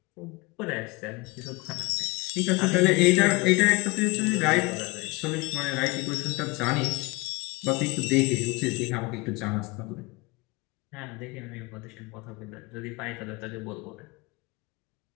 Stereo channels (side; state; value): right; quieter; 24.7 dB